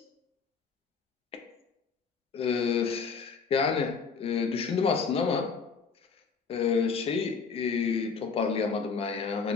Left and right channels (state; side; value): quieter; right; 5.4 dB